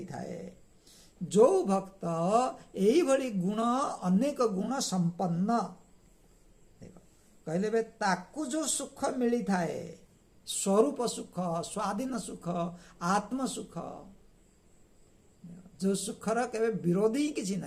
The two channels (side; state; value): both; identical; correlation 1.00